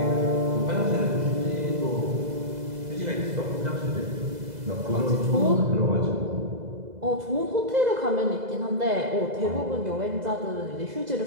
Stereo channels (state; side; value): late; left; 2.0 ms